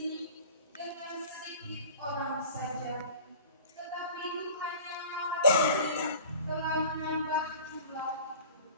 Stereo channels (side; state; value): both; inverted; correlation -0.43